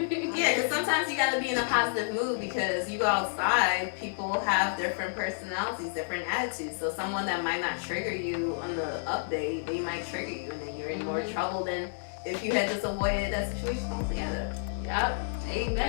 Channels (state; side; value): silent; right; 58 dB below the other